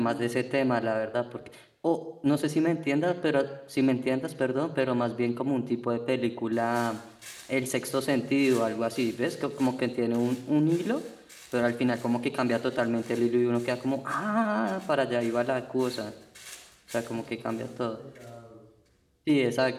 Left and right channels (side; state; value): both; identical; correlation 1.00